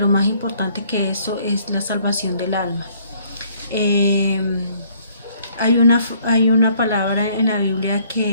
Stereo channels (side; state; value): both; inverted; correlation -0.62